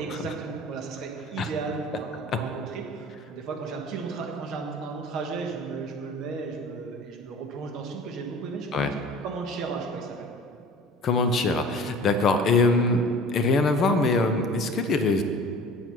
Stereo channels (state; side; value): normal; both; correlation 0.43